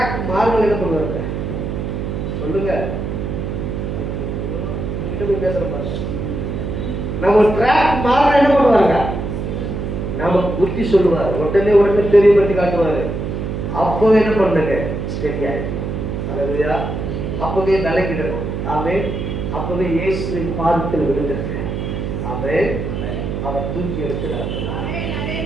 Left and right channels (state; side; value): noise; right; hum, 3 dB below the sound